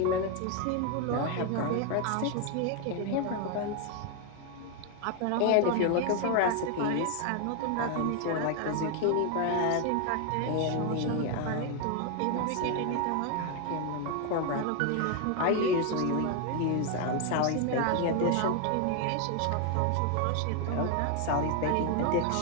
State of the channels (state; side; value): different; both; correlation 0.01